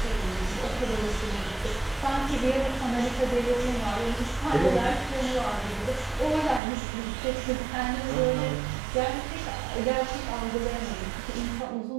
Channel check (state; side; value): drops out; left; at 6.6 s